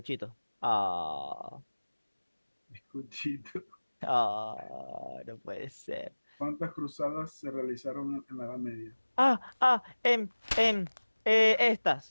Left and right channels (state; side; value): inverted; both; correlation -1.00